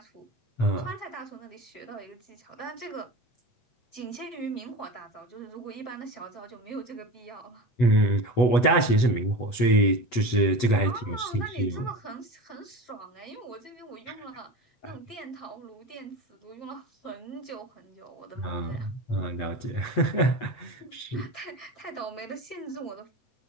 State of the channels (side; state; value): right; late; 8.1 ms